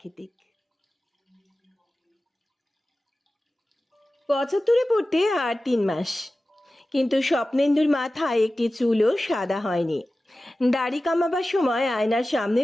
75-এ পড়তে আর 3 মাস, কিন্তু স্বপ্নেন্দুর মাথায় একটি চুলও সাদা হয়নি। দাড়ি কামাবার সময় আয়নার সামনে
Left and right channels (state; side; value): normal; both; correlation 0.95